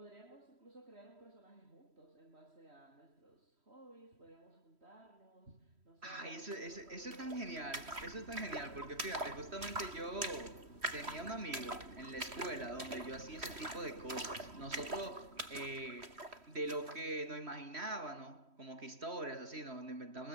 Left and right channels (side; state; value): left; late; 3.1 ms